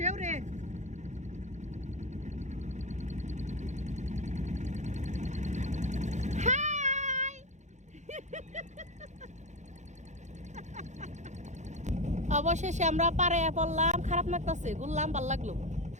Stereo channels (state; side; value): late; left; 0.34 ms